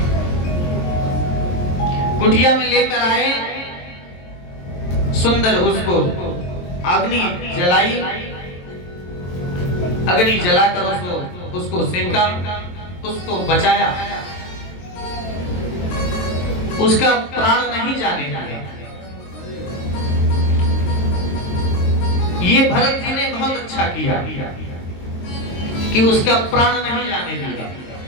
कुटिया में लेकर आए, सुंदर उसको अग्नि जलाई, अग्नि जलाकर उसको सेंका, उसको बचाया, उसका प्राण नहीं जाने दिया। ये भरत जी ने बहुत अच्छा किया कि उसका प्राण नहीं जाने दिया।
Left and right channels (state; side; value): late; right; 22 ms